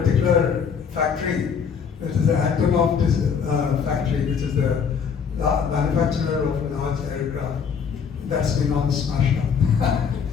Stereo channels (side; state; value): right; quieter; 6.6 dB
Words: factory, which is the Antonov factory, which is the manufacturer of large aircraft, that's been all smashed up.